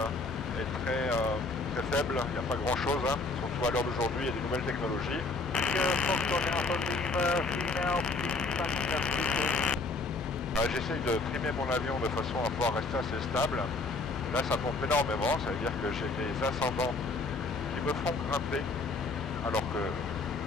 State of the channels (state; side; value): quieter; right; 3.5 dB